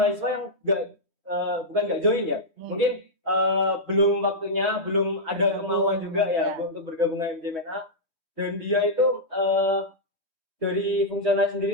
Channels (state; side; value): late; right; 3.1 ms